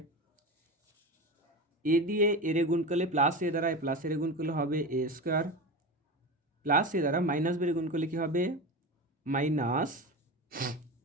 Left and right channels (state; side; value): normal; both; correlation 0.25